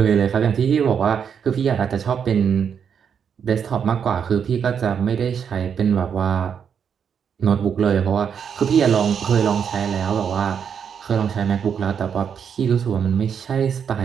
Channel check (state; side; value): quieter; left; 7.4 dB